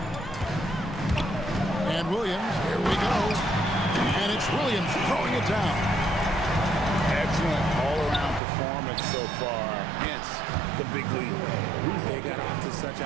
And Williams, here we go. And it's Williams throwing it down. Excellent all-around performance so far, hence the big lead. They got off to such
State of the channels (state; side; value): drops out; left; at 8.4 s